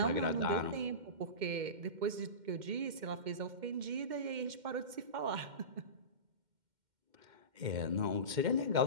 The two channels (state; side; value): late; left; 2.1 ms